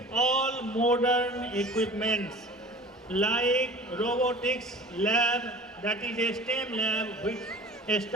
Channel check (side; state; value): both; normal; correlation 0.41